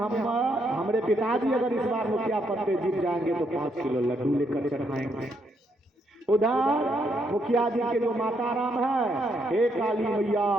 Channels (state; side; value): normal; both; correlation 0.75